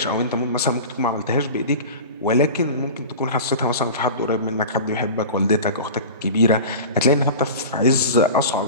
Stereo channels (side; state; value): both; inverted; correlation -0.34